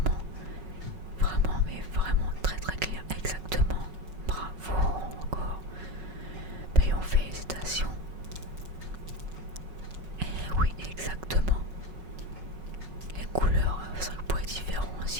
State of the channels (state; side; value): late; left; 5.4 ms